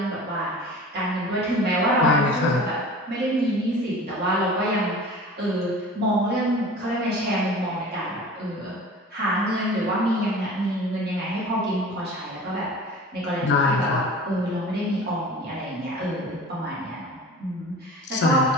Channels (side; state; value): both; normal; correlation 0.39